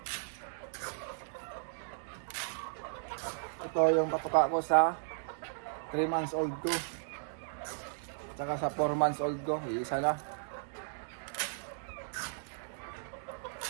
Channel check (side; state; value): left; silent; digital silence